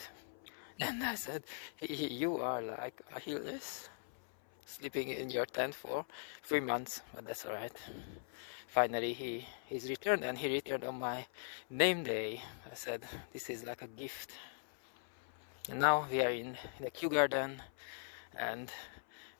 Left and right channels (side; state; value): right; silent; 51 dB below the other